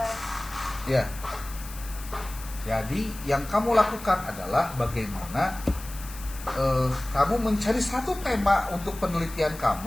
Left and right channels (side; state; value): left; noise; hiss, 15 dB below the sound